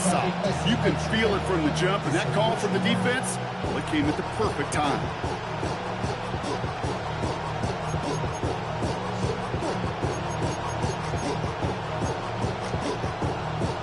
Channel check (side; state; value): both; identical; correlation 1.00